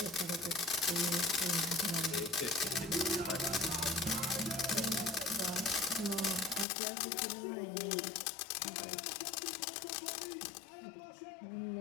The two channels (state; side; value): drops out; right; at 6.7 s